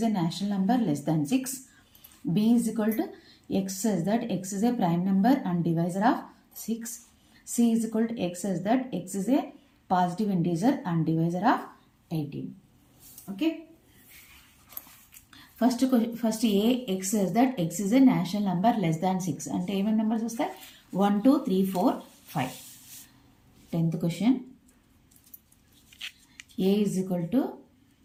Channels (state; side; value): identical; both; correlation 1.00